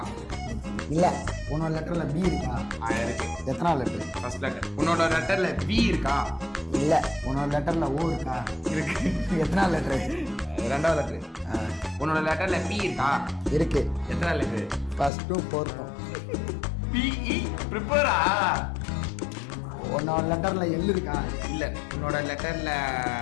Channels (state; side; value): drops out; right; at 15.1 s